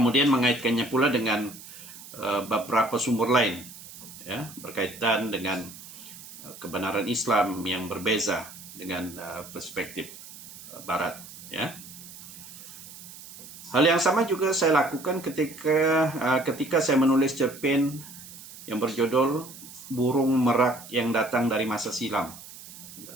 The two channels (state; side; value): noise; right; hiss, 16 dB below the sound